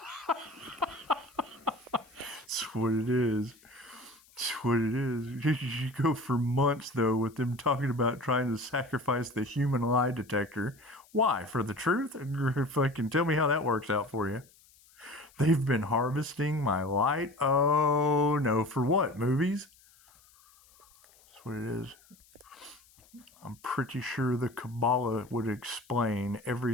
That's what it is. That's what it is. You go for months, though, with them talking about trying to sacrifice the human lie detector. Why? For the truth? Fucking tell me how that works out for you. They've been harvesting my light. Oh, no. For what? Movies? That's what it is. I'm pretty sure the Kabbalah would explain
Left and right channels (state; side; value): noise; left; hiss, 28 dB below the sound